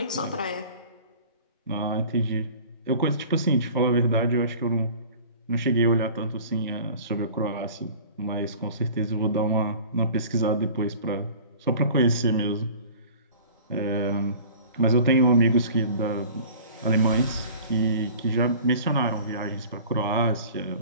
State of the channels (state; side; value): inverted; both; correlation -0.44